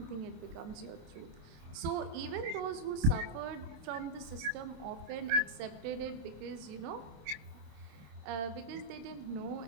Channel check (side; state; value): left; late; 26 ms